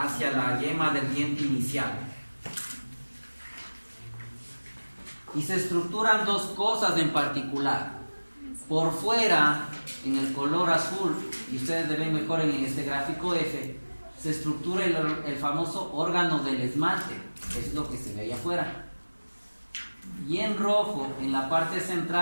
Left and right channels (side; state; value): both; inverted; correlation -1.00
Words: la yema del diente inicial. Y se estructuran dos cosas en particular. Por fuera, en el color azul, y ustedes ven mejor en este gráfico F, se estructura el famoso órgano del esmalte, que es lo que se ve ahí afuera. Y en rojo, en la parte